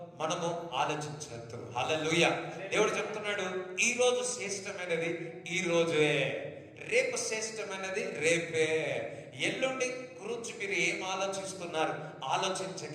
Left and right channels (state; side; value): identical; both; correlation 1.00